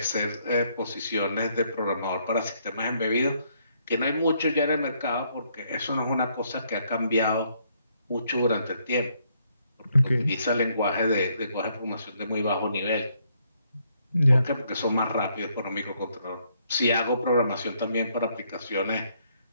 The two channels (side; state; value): both; inverted; correlation -0.72